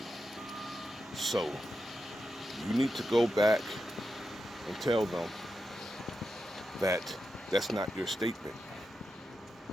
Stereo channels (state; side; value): normal; both; correlation 0.88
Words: So you need to go back and tell them that that's not your statement,